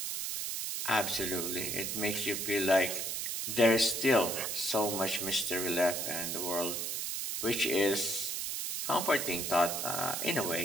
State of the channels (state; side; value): noise; right; hiss, 2 dB below the sound